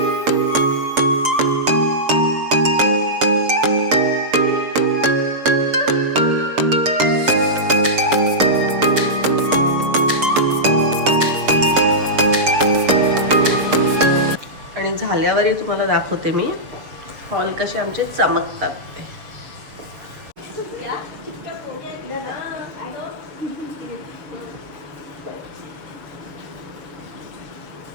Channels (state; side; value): late; left; 6.7 ms